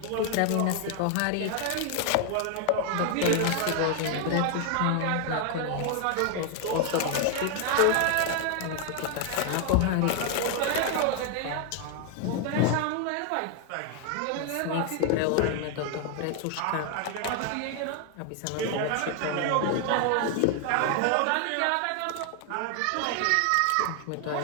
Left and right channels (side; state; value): both; different; correlation 0.00